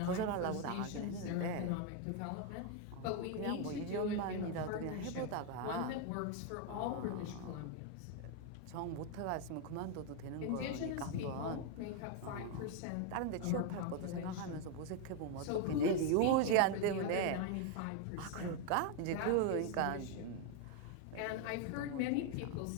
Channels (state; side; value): different; both; correlation 0.01